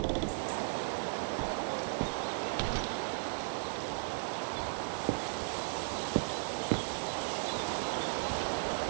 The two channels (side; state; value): left; silent; digital silence